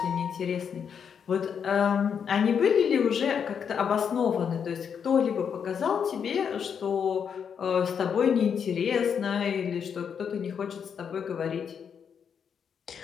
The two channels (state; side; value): quieter; right; 7.2 dB